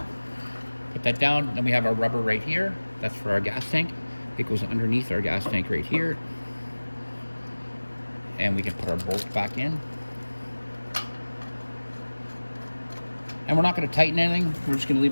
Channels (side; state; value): both; inverted; correlation -1.00